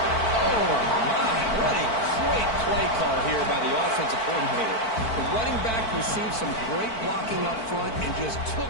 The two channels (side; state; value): right; late; 4.5 ms